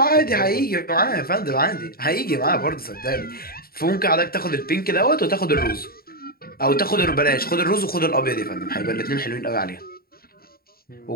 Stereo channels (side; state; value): right; late; 0.44 ms